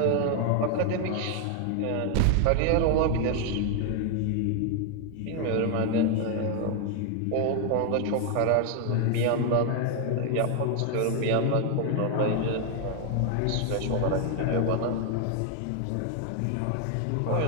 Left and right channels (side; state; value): both; different; correlation 0.00